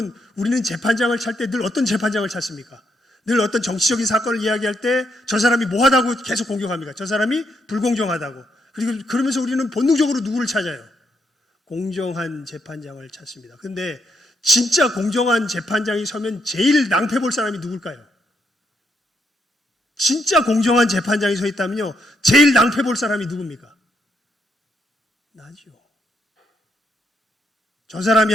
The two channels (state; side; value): normal; both; correlation 0.77